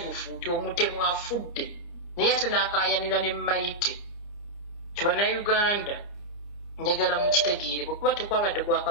nti omutemu afudde naye ate n'akaayanira ne Mayite kibannayuganda njagala mukitegeere bwekuba tekwabadde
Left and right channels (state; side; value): late; right; 29 ms